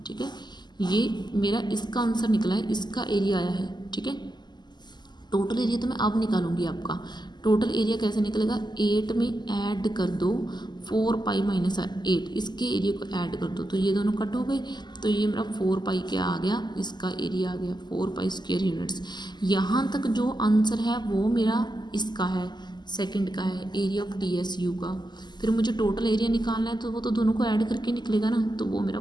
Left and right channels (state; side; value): late; right; 0.21 ms